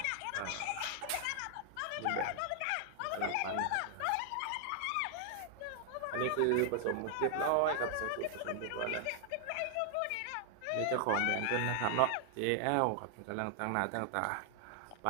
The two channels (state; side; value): different; both; correlation 0.00